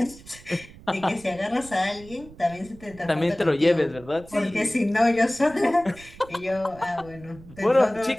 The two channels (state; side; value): noise; right; rumble, 20 dB below the sound